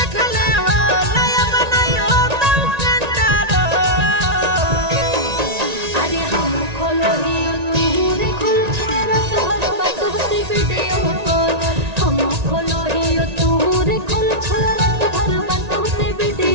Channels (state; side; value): late; left; 1.9 ms